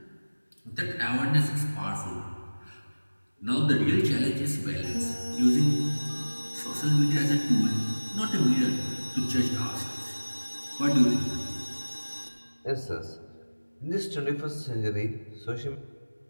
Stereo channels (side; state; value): both; inverted; correlation -1.00